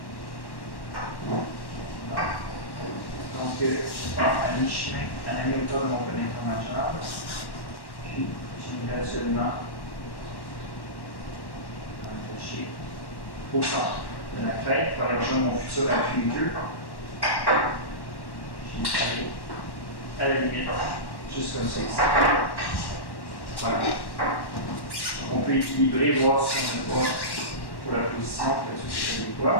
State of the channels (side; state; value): right; late; 1.1 ms